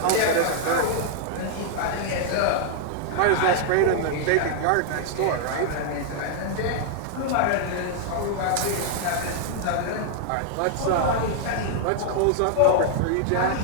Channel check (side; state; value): both; different; correlation -0.01